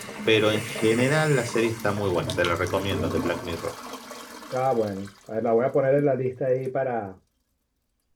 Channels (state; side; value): identical; both; correlation 1.00